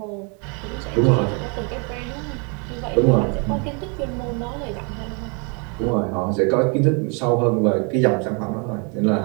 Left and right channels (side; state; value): left; quieter; 35.2 dB